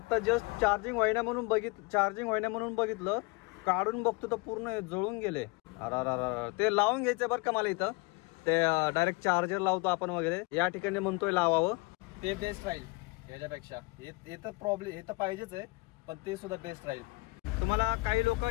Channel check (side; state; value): right; quieter; 26.0 dB